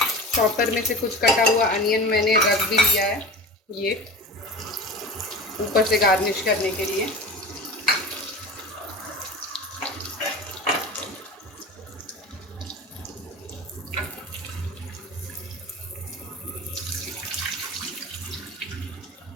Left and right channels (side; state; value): both; normal; correlation 0.33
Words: चॉपर में से कुछ कटा हुआ अनियन मैंने रख भी लिया है, ये ऊपर से गार्निश करने के लिए।